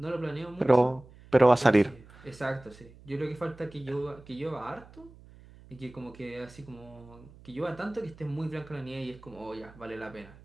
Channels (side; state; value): right; noise; hum, 22 dB below the sound